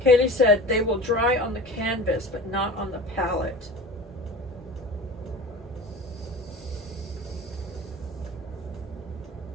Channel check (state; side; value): normal; both; correlation 0.36